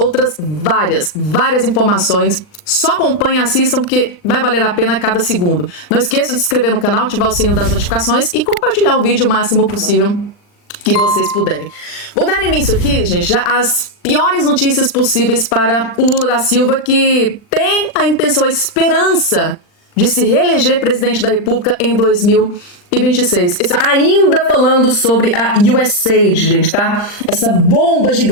várias informações, só acompanhem, assistam, porque vai valer a pena cada segundo. Não esqueça de se inscrever no canal, ativar o sininho das notificações e compartilhar o vídeo o máximo possível que vocês puderem. Vou dar início aqui, gente, já às piores notícias possíveis para o Lula da Silva, que tem a intenção, a esperança de se reeleger presidente da República em 2026. Ainda falando sobre a USAID, gente, tá? Essa bomba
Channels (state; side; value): late; right; 39 ms